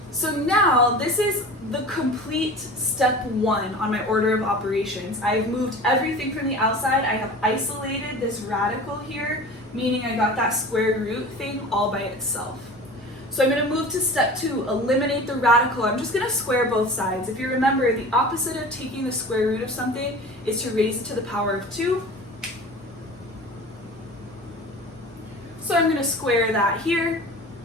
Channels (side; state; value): both; normal; correlation 0.37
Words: So now this is the complete step 1 on my order of operations. I've moved everything from the outside. I have isolated this radical here, meaning I got that square root thing all by itself. So I'm going to move to step 2, eliminate the radical. I'm just going to square both sides. If you remember, the opposite of taking the square root of something is to raise it to the power of 2. So I'm going to square that here,